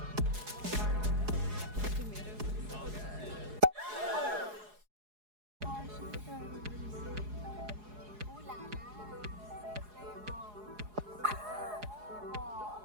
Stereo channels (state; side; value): late; left; 4.8 ms